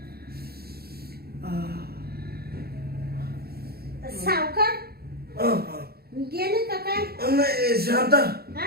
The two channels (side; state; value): left; late; 0.45 ms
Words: सावकार गेले का काय? नाही शांता,